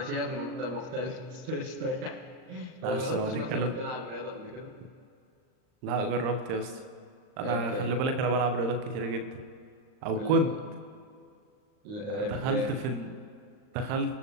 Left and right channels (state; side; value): late; left; 39 ms